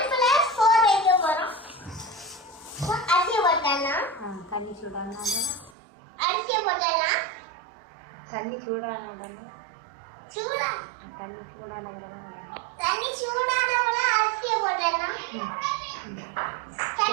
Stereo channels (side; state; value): left; drops out; at 5.7 s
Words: வைக்க போறோம். அரிசி போட்டலாம். தண்ணி சூடானா அரிசி போட்டலாம். தண்ணி சூடானா சூடா தண்ணி சூடானா தண்ணி சூடானவங்க அரிசி போட்டலாம்.